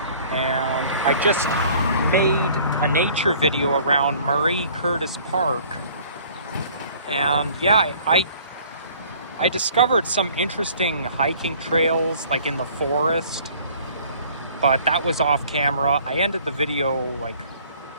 And I just made a nature video around Marie Curtis Park. And yeah, I discovered some interesting hiking trails like in the forest, but that was off camera. I ended the video like,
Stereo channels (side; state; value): both; inverted; correlation -0.53